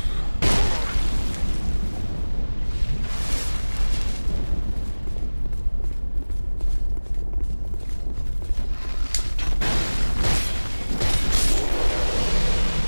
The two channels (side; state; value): both; inverted; correlation -1.00